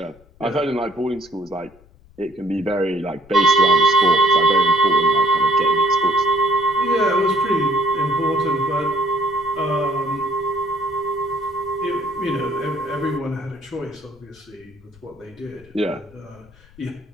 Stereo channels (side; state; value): left; noise; rumble, 27 dB below the sound